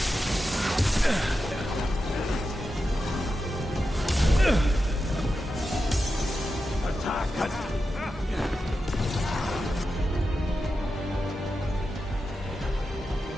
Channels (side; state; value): both; normal; correlation 0.90